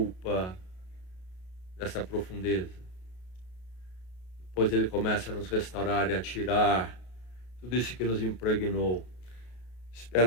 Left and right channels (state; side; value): late; right; 33 ms